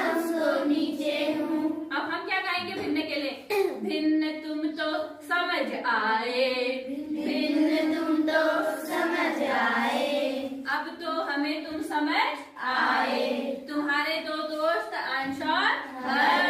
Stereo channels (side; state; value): both; identical; correlation 1.00